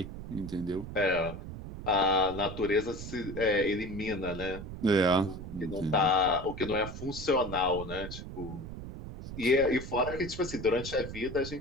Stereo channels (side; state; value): right; noise; rumble, 10 dB below the sound